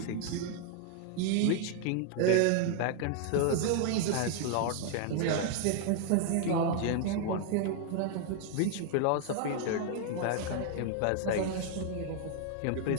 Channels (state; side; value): different; both; correlation 0.00